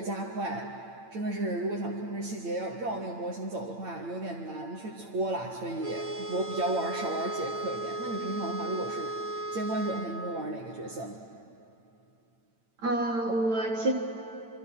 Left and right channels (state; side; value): late; left; 8.9 ms